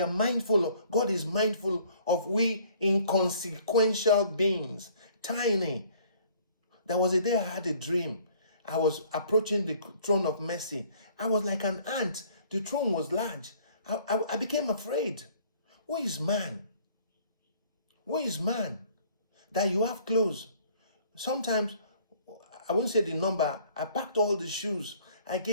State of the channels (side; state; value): both; inverted; correlation -0.57